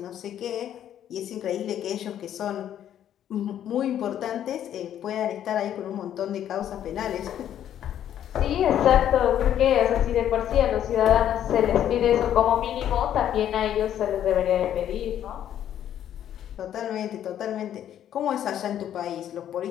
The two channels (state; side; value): quieter; right; 10.6 dB